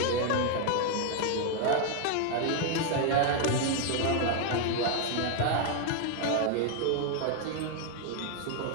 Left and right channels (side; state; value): both; different; correlation 0.00